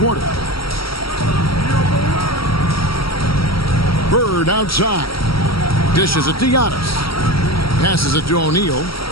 Bird outside. Dishes it to Giannis. Passes it to O'Neal.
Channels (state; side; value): late; right; 0.75 ms